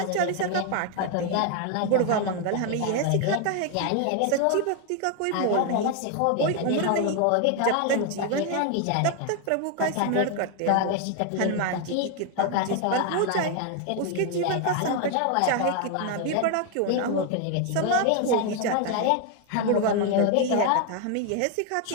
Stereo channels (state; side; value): different; both; correlation 0.01